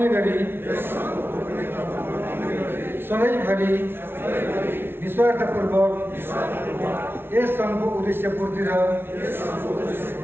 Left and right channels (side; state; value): left; late; 0.11 ms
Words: गरी सधैँभरि निस्वार्थपूर्वक यस सङ्घको उद्देश्य पूर्ति र